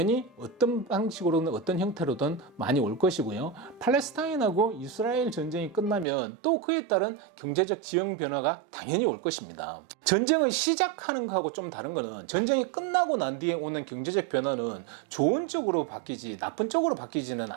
어떤 방식으로든 어떤 형태로든 많이 올 것이고요. 팔레스타인하고 이스라엘 전쟁이 끝나면 또 그에 따른 경제적 지형 변화가 당연히 올 것입니다. 전쟁을 시작하는 거하고 좀 다른 거는 전쟁이 끝나고 난 뒤에 오는 경제적 변화는 좋은 쪽으로 바뀌지 나쁜 쪽으로 바뀌지는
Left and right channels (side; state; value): left; drops out; at 6.1 s